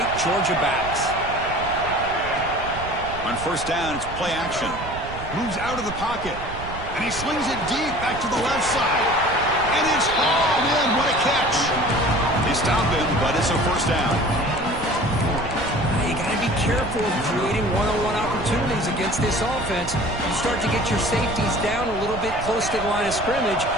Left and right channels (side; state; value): right; noise; rumble, 11 dB below the sound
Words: Georgia backs. On first down, it's play action. Moves out of the pocket. And he slings it deep back to the left side. And it's hauled in. What a catch. They stop him, but it's a first down. You got to be careful of creating one-on-one opportunities against this offense. You start to get your safeties down a little bit close to the line of scrimmage,